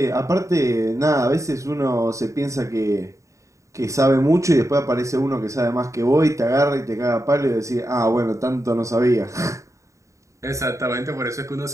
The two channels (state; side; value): late; left; 0.15 ms